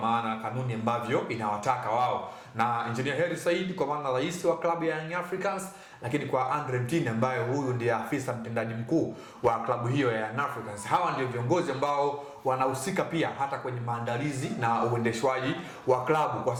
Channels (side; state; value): both; identical; correlation 1.00